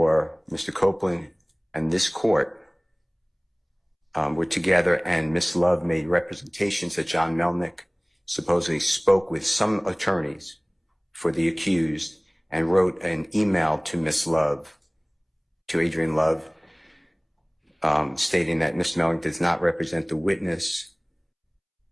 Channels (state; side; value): identical; both; correlation 1.00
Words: Mr. Copeland and this court were together, and Miss Love made representations that John Melnick supposedly spoke with some attorneys for the accused and wrote an email to Miss Love, to Adrian Love, stating that Mr. Melnick does not represent the witness,